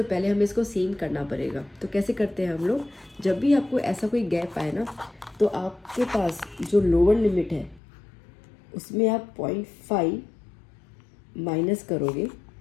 पहले हमें इसको सेम करना पड़ेगा। तो कैसे करते हैं हम लोग, जब भी आपको ऐसा कोई गैप आए ना, तो आपके पास जो लोअर लिमिट है उसमें आप 0.5 माइनस करोगे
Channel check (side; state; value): right; drops out; at 7.8 s